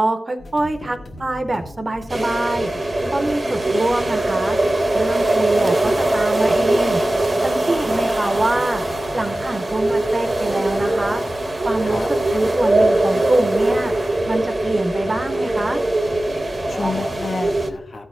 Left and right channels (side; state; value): both; normal; correlation 0.96